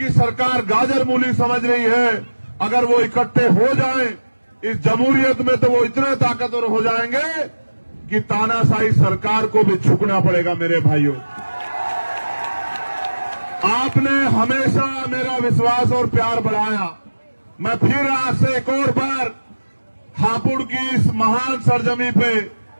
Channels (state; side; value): inverted; both; correlation -1.00